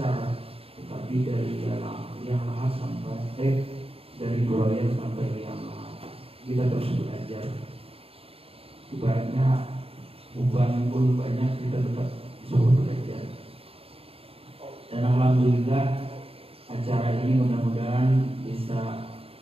tetapi dari yang lahat sampai dari buaya sampai yang lahat kita terus belajar. Ibaratnya beban pun banyak, kita tetap disuruh belajar. Dan alhamdulillah acara ini mudah-mudahan bisa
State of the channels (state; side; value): late; left; 0.28 ms